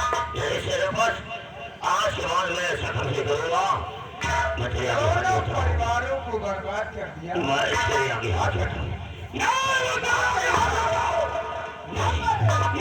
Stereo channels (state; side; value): identical; both; correlation 1.00